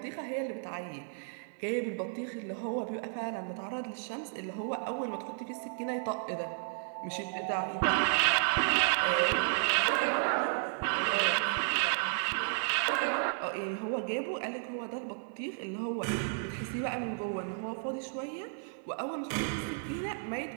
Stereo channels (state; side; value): silent; left; 56 dB below the other